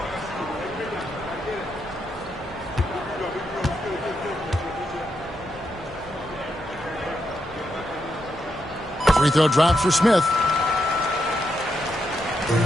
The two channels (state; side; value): normal; both; correlation 0.82